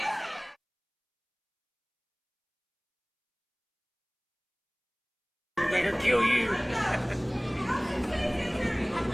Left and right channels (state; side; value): identical; both; correlation 1.00